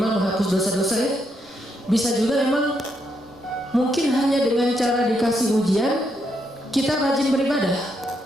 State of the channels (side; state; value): right; noise; rumble, 29 dB below the sound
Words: menghapus dosa-dosa ya. Bisa juga emang mungkin hanya dengan cara dikasih ujian kita rajin beribadah,